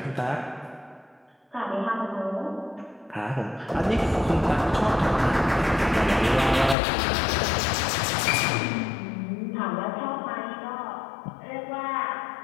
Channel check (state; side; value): drops out; right; at 6.8 s